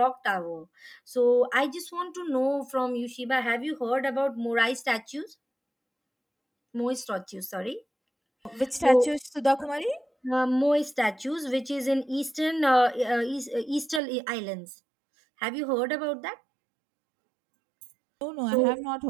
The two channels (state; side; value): drops out; left; at 14.0 s